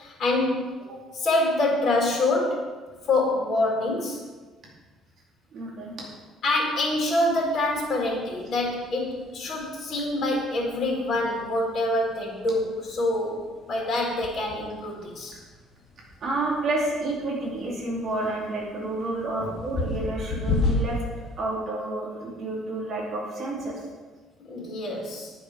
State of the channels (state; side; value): normal; both; correlation 0.58